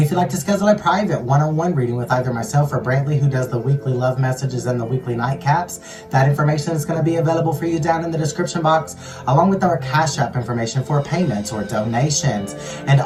if you'd like to schedule a private one-on-one reading with either myself or Brantley, who does the weekly love messages and the weekly nightcaps, that information is going to be available for you down in the description box, along with our Cash App information for payments or donations. And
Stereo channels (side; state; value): both; identical; correlation 1.00